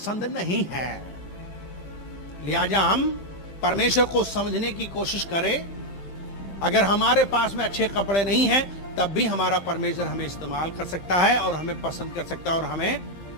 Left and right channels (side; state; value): right; late; 15 ms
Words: नहीं है। लिहाजा हम परमेश्वर को समझने की कोशिश करें। अगर हमारे पास में अच्छे कपड़े नहीं हैं तब भी हमारा परमेश्वर हमें इस्तेमाल कर सकता है और हमें पसंद कर सकता है और हमें